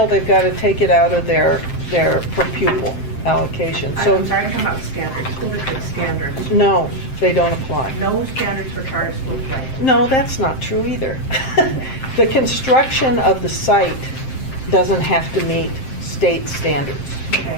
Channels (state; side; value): late; right; 7.6 ms